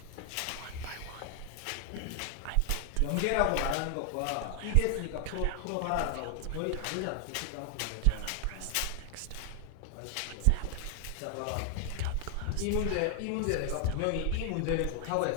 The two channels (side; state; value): both; different; correlation 0.00